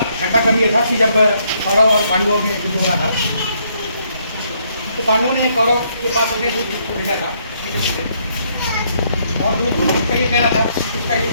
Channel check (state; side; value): inverted; both; correlation -0.71